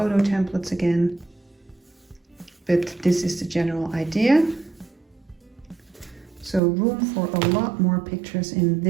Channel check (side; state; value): left; drops out; at 6.6 s